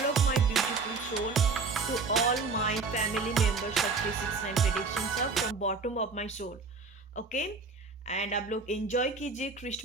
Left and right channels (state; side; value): quieter; left; 4.3 dB